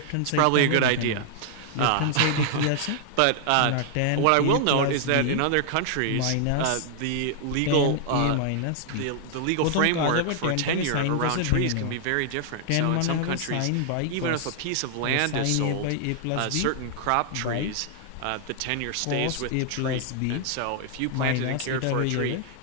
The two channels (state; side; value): different; both; correlation 0.00